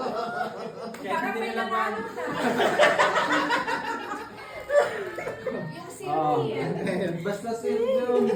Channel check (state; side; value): identical; both; correlation 1.00